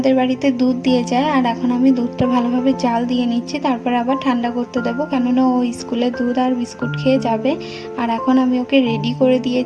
বাড়িতে দুধ দিয়ে যায়, আর এখন আমি দুধটা ভালোভাবে জাল দিয়ে নিচ্ছি, তারপরে আবার ঠান্ডা করতে দেবো, কেননা ও স্কুলে দুধ আর বিস্কুট খেয়ে যাবে। আর এখন আমি ওকে রেডি করে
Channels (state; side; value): identical; both; correlation 1.00